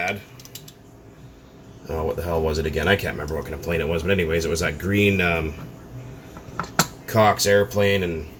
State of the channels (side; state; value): both; identical; correlation 1.00